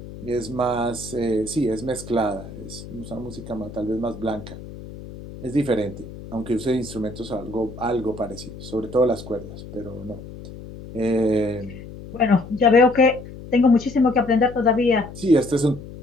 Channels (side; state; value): left; noise; hum, 14 dB below the sound